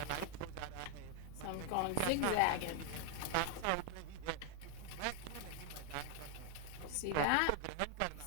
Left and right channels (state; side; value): different; both; correlation 0.00